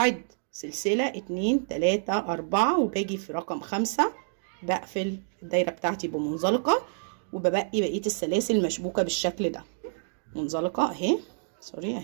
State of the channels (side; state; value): left; silent; digital silence